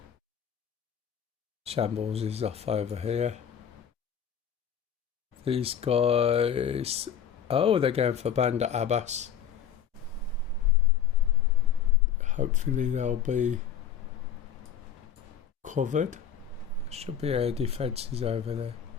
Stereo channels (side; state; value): right; quieter; 8.7 dB